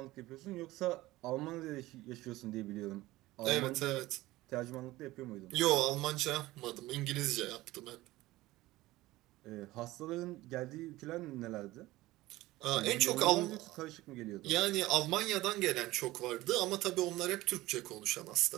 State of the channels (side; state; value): left; quieter; 18.0 dB